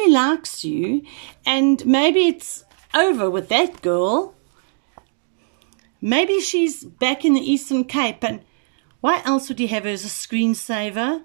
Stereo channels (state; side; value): silent; left; 64 dB below the other